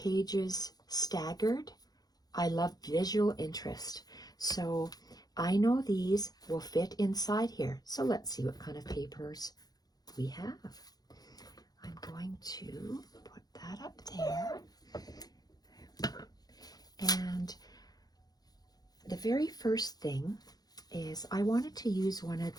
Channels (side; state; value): right; late; 0.19 ms